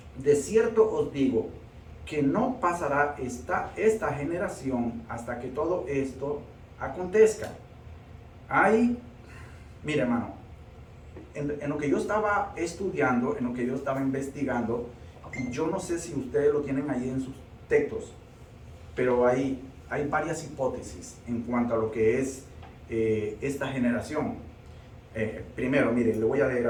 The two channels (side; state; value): both; identical; correlation 1.00